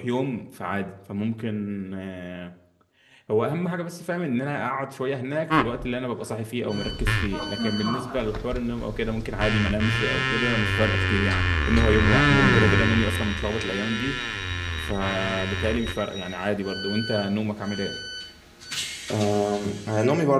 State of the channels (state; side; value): identical; both; correlation 1.00